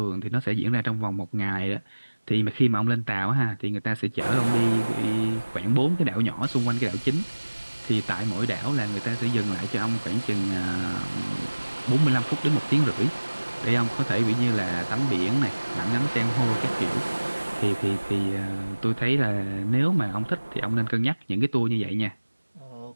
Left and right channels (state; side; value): inverted; both; correlation -1.00